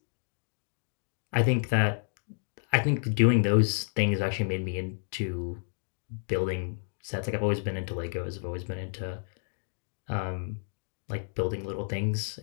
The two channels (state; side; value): silent; right; digital silence